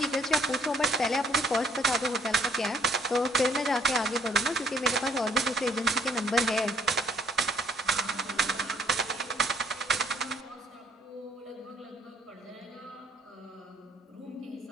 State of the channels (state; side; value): normal; both; correlation 0.64